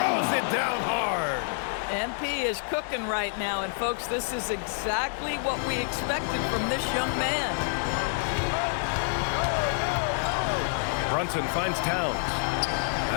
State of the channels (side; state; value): right; silent; digital silence